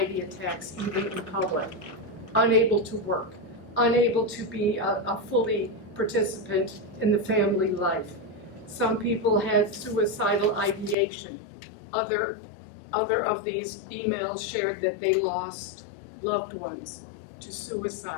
attacks even in public. Unable to work, unable to be a fully participant in the family life. Some people had suicidal ideation. Other of these emails shared that they lost loved ones to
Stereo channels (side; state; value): right; drops out; at 11.0 s